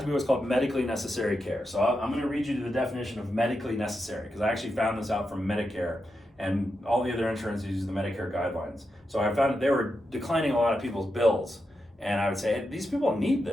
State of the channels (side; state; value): both; normal; correlation 0.87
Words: to be what's called medically necessary care. So I'm going to read you the definition of medically necessary, because I actually found this out from Medicare, and all the other insurances use the Medicare guidelines. So I found that they were declining a lot of people's bills, and I would say, hey, these people need